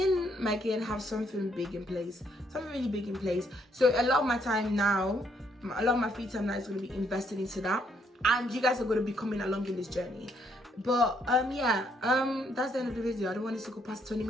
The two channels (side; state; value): both; normal; correlation 0.71